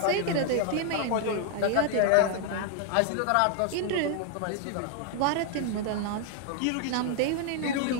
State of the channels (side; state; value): both; different; correlation 0.00